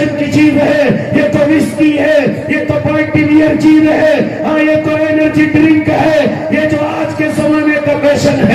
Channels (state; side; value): identical; both; correlation 1.00